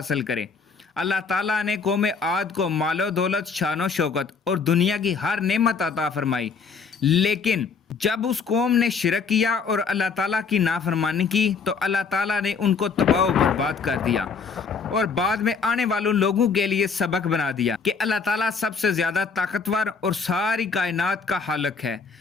کرے۔ اللہ تعالیٰ نے قوم عاد کو مال و دولت، شان و شوکت اور دنیا کی ہر نعمت عطا فرمائی، لیکن جب اس قوم نے شرک کیا اور اللہ تعالیٰ کی نافرمانی کی تو اللہ تعالیٰ نے ان کو تباہ و برباد کر دیا، اور بعد میں آنے والوں لوگوں کے لیے سبق بنا دیا کہ اللہ تعالیٰ سب سے زیادہ طاقتور اور ساری کائنات کا خالق ہے۔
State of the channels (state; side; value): quieter; right; 5.3 dB